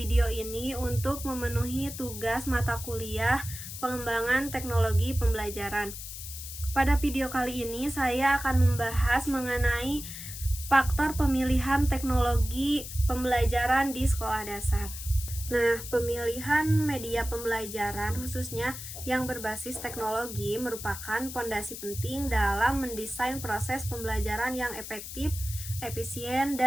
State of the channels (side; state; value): left; noise; hiss, 10 dB below the sound